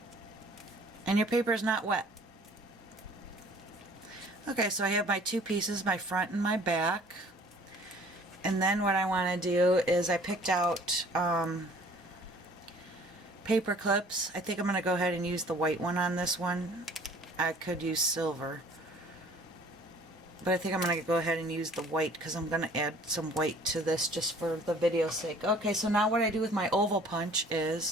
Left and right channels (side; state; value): both; normal; correlation 0.53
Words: And your paper is not wet. Okay, so I have my 2 pieces, my front and my back. And then what I want to do is I picked out paper clips. I think I'm going to go ahead and use the white one on this one. I could use silver, but I think I'm going to go ahead and use the white because I'm going to add some white to this just for the video's sake. Okay, so now what I do with my oval punch